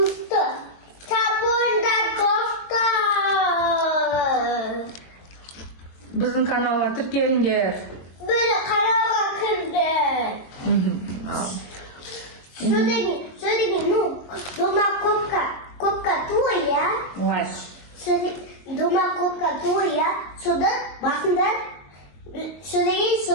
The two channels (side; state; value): right; late; 22 ms